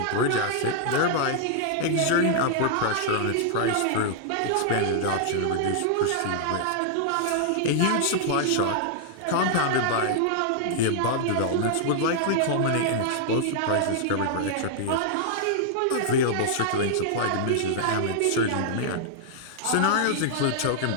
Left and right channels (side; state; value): both; different; correlation -0.01